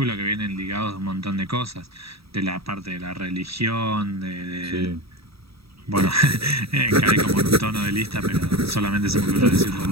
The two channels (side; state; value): left; late; 0.77 ms